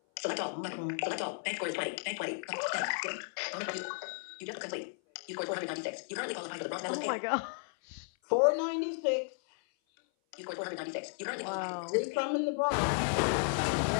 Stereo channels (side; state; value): right; silent; 55 dB below the other